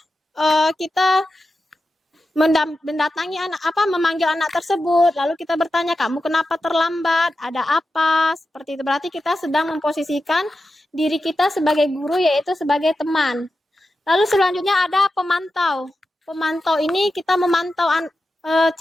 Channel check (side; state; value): both; normal; correlation 0.91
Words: kita mendatangi memanggil anak tersebut, lalu kita bertanya, kamu kenapa terlambat, ada apa, seperti itu. Berarti kita sedang memposisikan diri kita sebagai guru, yaitu sebagai teman. Lalu selanjutnya ada pemantau. Pemantau ini kita memantau,